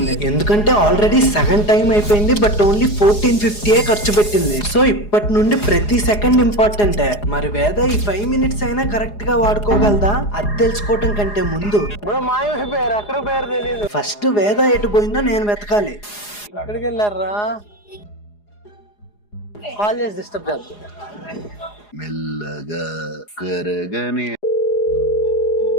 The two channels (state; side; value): late; right; 4.8 ms